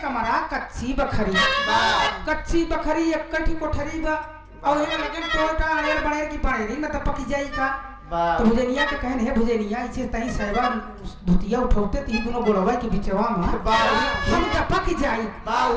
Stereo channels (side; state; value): both; identical; correlation 1.00